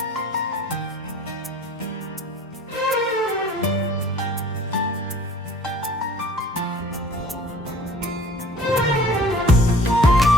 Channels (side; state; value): both; normal; correlation 0.49